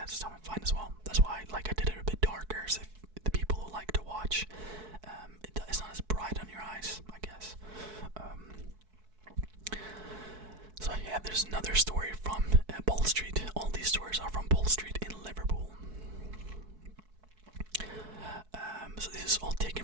it's fine as well. That's why like I did it a bit darker, so if the people who like to watch, it's not as bright on your eyes, I guess. So yeah, there's another story from Pole Street. All these stories are from Pole Street in Liverpool. So this is all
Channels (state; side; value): late; left; 4.6 ms